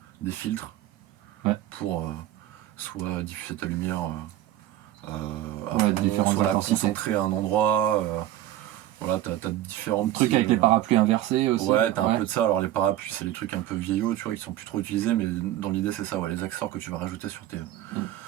des filtres pour soit diffuser ta lumière à fond, différentes soit la intensités. concentrer à un endroit. Voilà, t'as différents Truc petits, avec les parapluies inversés aussi. Ouais, t'as un peu de ça. Alors les parapluies, c'est des trucs un peu vieillots, tu vois, qui sont plus trop utilisés, mais dans l'idée c'est ça, ouais, les accessoires que tu vas rajouter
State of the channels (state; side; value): quieter; left; 13.5 dB